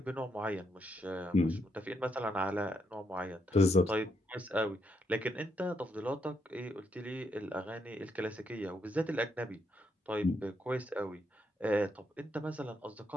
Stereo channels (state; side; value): normal; both; correlation 0.78